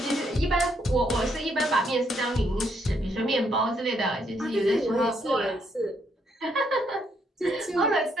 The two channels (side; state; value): both; normal; correlation 0.73